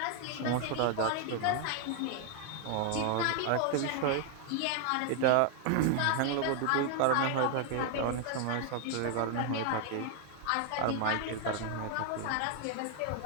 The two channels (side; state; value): both; different; correlation 0.00